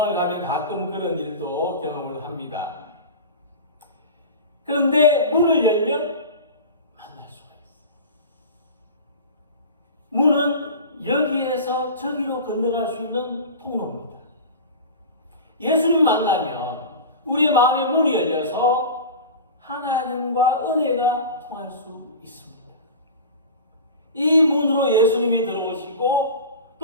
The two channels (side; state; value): both; inverted; correlation -0.32